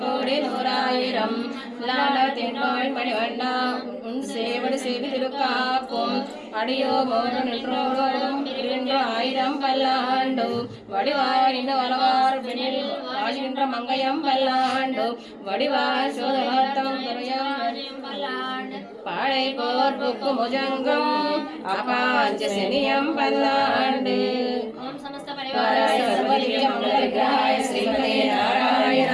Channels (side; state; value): both; identical; correlation 1.00